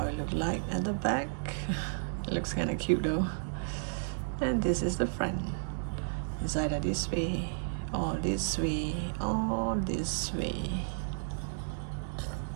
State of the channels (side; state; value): left; silent; digital silence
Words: it looks like at the back. It looks kind of cute though. And this is the front. It's either this way, or this way, or this way.